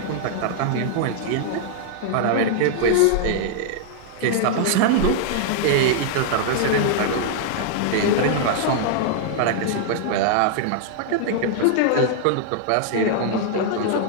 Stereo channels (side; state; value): both; different; correlation -0.01